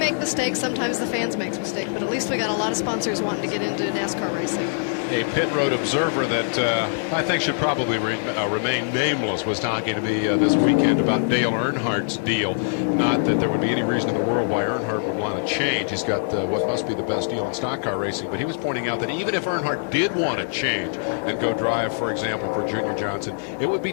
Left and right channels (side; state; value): right; silent; digital silence